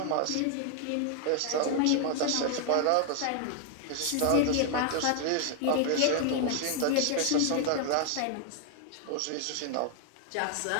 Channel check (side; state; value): both; different; correlation 0.00